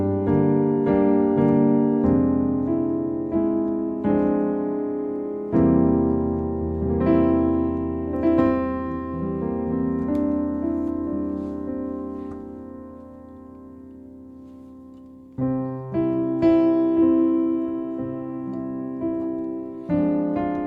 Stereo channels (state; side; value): identical; both; correlation 1.00